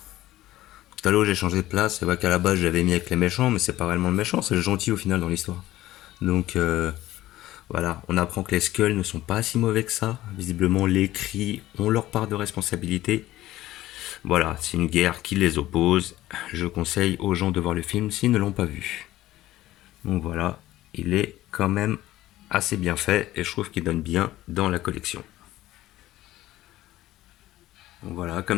Talos, j'ai changé de place. C'est vrai qu'à la base, j'avais mis avec les méchants, mais c'est pas réellement le méchant, c'est le gentil au final dans l'histoire. Donc, voilà, on apprend que les Skulls ne sont pas si mauvais que ça. Visiblement, les Cris ont leur part de responsabilité. Voilà, c'est une guerre qui les oppose. Je conseille aux gens de voir le film s'ils ne l'ont pas vu. Donc voilà, il est quand même assez bien fait et je trouve qu'il donne bien dans la collection. Donc voilà,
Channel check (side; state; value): right; quieter; 15.5 dB